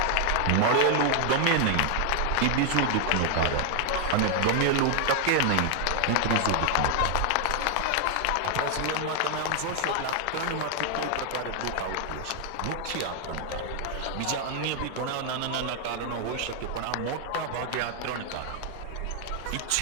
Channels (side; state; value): both; different; correlation 0.00